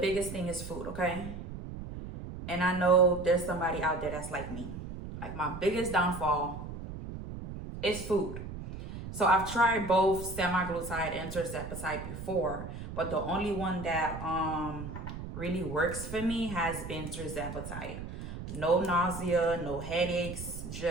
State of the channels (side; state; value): right; noise; rumble, 9 dB below the sound